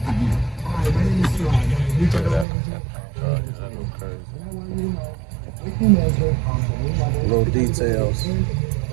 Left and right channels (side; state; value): left; drops out; at 2.5 s